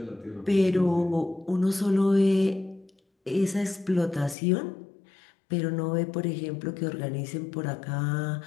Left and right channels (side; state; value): right; drops out; at 4.4 s